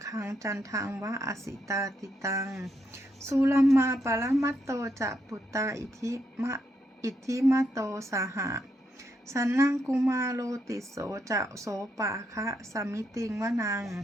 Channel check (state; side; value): normal; both; correlation 0.79